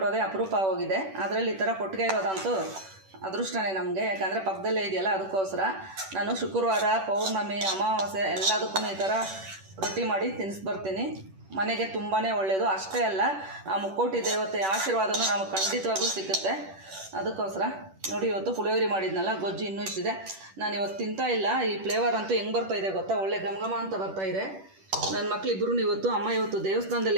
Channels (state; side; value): late; left; 10 ms